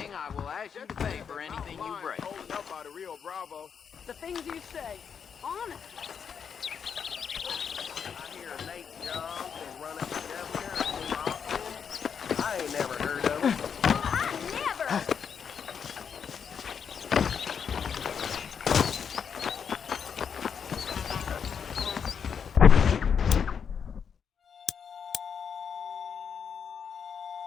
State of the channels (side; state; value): right; quieter; 7.0 dB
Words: I will ask you to pay for anything you break. The things you say, honestly.